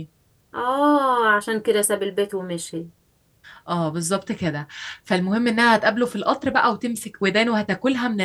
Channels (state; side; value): identical; both; correlation 1.00